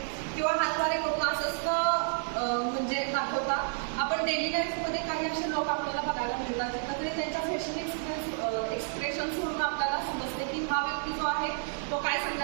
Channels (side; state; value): left; silent; digital silence